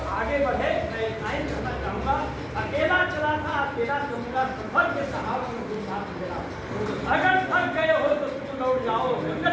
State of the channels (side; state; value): both; identical; correlation 1.00